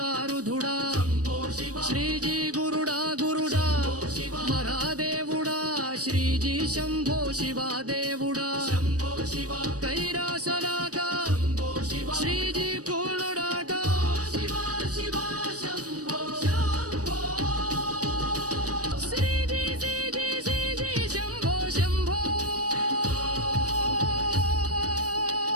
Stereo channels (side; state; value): left; late; 0.67 ms